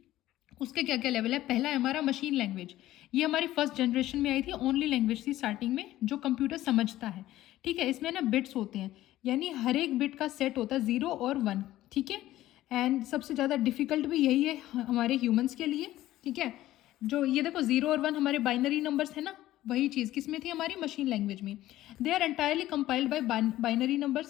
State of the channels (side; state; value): right; quieter; 14.9 dB